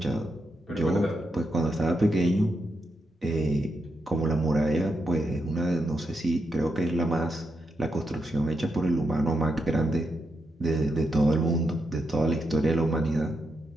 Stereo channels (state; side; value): normal; both; correlation 0.83